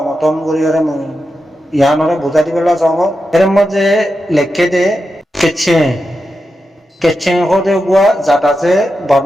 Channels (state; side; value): normal; both; correlation 0.89